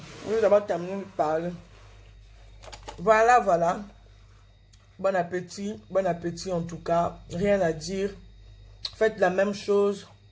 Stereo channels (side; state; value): both; identical; correlation 1.00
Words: vais d'abord terminer de parler. Voilà, voilà. Bon appétit en tout cas. Rien à dire. Faites la même chose.